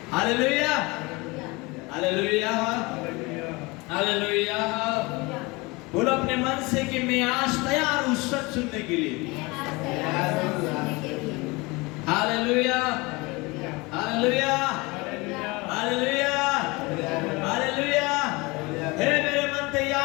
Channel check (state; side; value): quieter; right; 24.8 dB